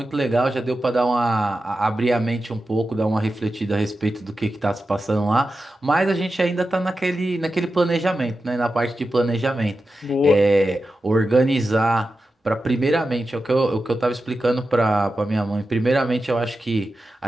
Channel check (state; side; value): normal; both; correlation 0.91